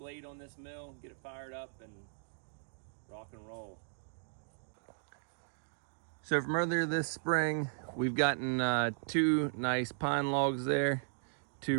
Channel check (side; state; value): left; silent; digital silence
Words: on this mill, get it fired up, and rock and roll. So from earlier this spring, we've gotten 2 nice pine logs there,